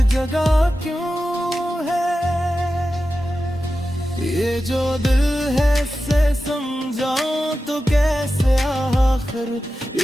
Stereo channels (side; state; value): both; normal; correlation 0.93